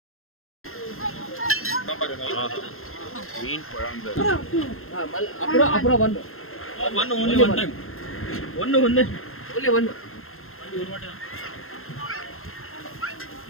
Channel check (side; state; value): right; late; 0.62 ms